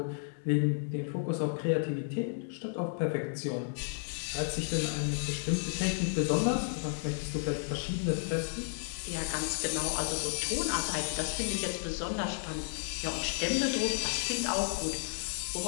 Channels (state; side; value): silent; right; digital silence